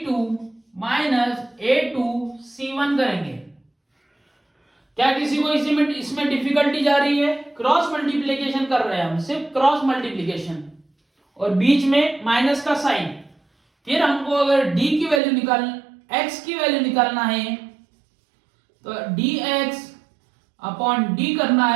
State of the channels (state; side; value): drops out; left; at 15.2 s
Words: minus a2 c1 करेंगे। क्या किसी को इसमें डिफिकल्टी जा रही है? क्रॉस मल्टीप्लिकेशन कर रहे हैं हम, सिर्फ क्रॉस मल्टीप्लिकेशन, और बीच में माइनस का साइन। फिर हमको अगर d की वैल्यू x की वैल्यू निकालना है तो dx अपॉन d करना